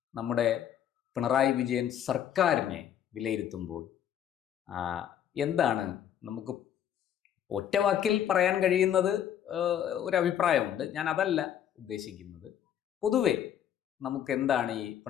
നമ്മുടെ പിണറായി വിജയൻ സർക്കാരിനെ വിലയിരുത്തുമ്പോൾ, എന്താണ് നമുക്ക് ഒറ്റവാക്കിൽ പറയാൻ കഴിയുന്നത്? ഒരു അഭിപ്രായമുണ്ട്, ഞാൻ അതല്ല ഉദ്ദേശിക്കുന്നത്. പൊതുവെ നമുക്ക് എന്താണ് ഈ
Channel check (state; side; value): quieter; right; 10.0 dB